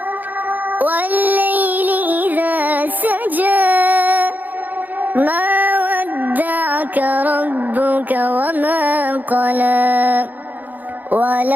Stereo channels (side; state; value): left; late; 0.083 ms